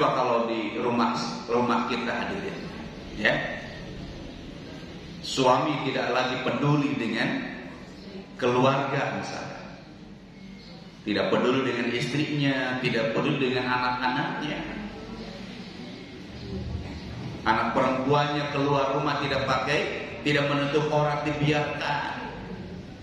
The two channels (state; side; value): identical; both; correlation 1.00